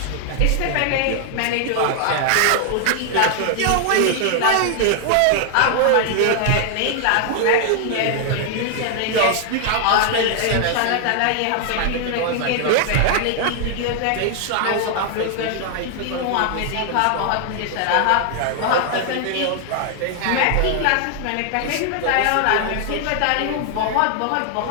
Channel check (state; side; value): different; both; correlation 0.00